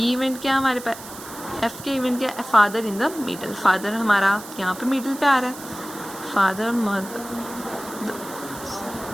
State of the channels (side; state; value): right; noise; hiss, 14 dB below the sound